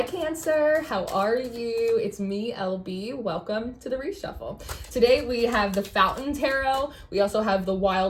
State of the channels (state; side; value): identical; both; correlation 1.00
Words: Cancer, how are you? It's me, LB. Welcome to the Reshuffle. Today we have the Fountain Tarot. We also have the